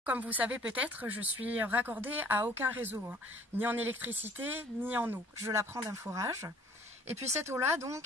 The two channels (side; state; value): both; normal; correlation 0.54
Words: Comme vous savez peut-être, je suis raccordée à aucun réseau, ni en électricité, ni en eau. Je la prends d'un forage. Et puis cette eau-là,